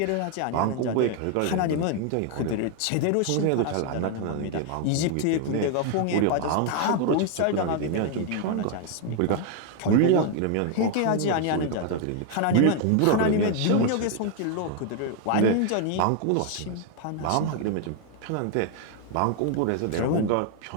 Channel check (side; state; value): both; different; correlation 0.00